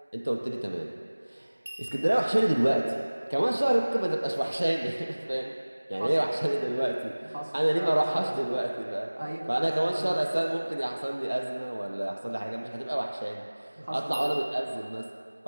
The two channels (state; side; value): inverted; both; correlation -1.00